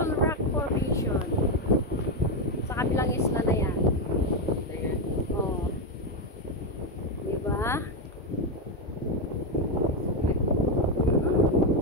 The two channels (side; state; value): both; normal; correlation 0.06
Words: rock formation. Sa kabilang isla na yan. Oh. Diba?